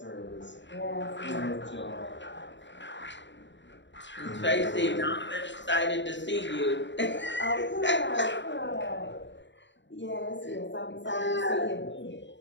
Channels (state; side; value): late; right; 0.53 ms